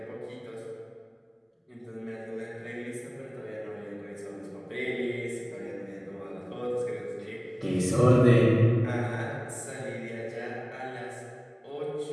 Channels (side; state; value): both; identical; correlation 1.00